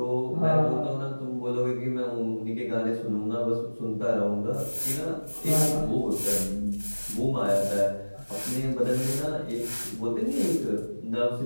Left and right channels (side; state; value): both; inverted; correlation -1.00